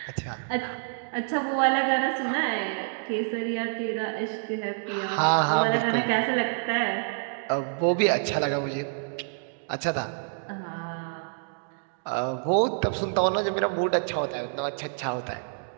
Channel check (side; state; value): left; silent; digital silence